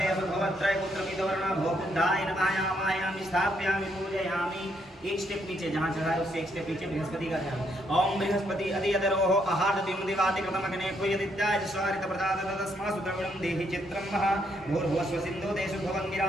भवत्रय पुत्रमिदवर्णा भो बुद्धाय नमः आवाहयामि स्थापयामि पूजयामि। एक स्टेप नीचे जहाँ चढ़ाए उससे एक स्टेप नीचे बृहस्पति का ध्यान। ओम बृहस्पति अधियदरोह आहार द्विमुदिवाति कृतमग्ने कुयदित्याय स्वारित प्रदात तस्मासु द्रविणं देहि चित्रं मह भूर्भुवस्व सिन्धु देशु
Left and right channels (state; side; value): normal; both; correlation 0.74